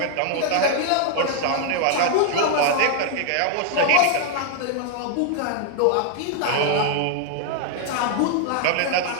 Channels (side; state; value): both; different; correlation 0.00